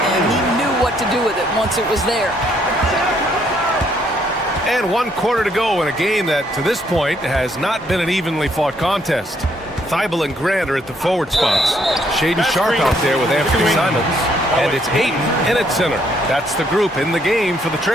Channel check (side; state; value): both; normal; correlation 0.69